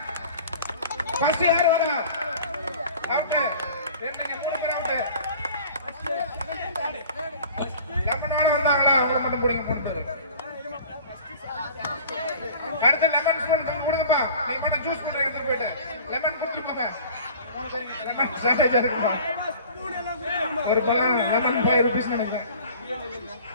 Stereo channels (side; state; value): both; inverted; correlation -0.45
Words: ஃபர்ஸ்ட் யார் வரா? அவுட். ரெண்டுங்க மூணு பேர் அவுட். லெமன் வால வந்தாங்களா? அவங்கள மட்டும் பிடிங்க பண்ணுங்க. அடுத்து லெமன் ஸ்பூன் கொடுங்கப்பா. நீங்க மட்டும் ஜூஸ் குடிங்க எடுத்து போயிட்டு. லெமன் குடிங்க. லெமன் ஸ்ட்ராட்டஜி இருக்குப்பா. ஒரு பழம் லெமன் 5 ரூபீஸ் நினைக்கிறேன்.